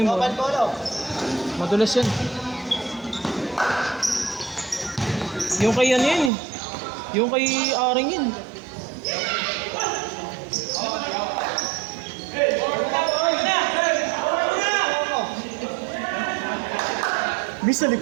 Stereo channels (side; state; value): left; drops out; at 6.3 s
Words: yung bola. Kapan bola. Madulas yan. Yung kay ano yan eh. Yung kay Aring yun. Miss sa